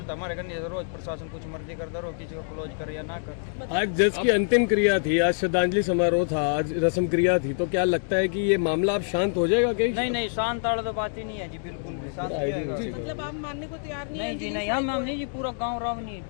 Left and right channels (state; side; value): silent; right; digital silence